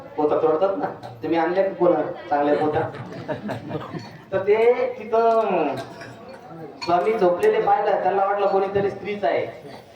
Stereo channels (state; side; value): identical; both; correlation 1.00